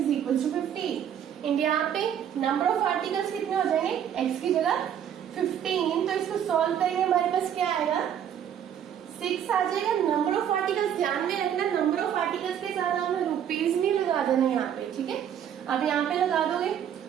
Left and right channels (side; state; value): left; quieter; 9.4 dB